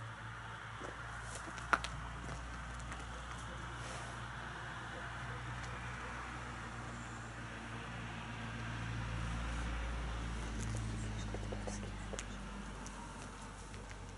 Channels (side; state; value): both; identical; correlation 1.00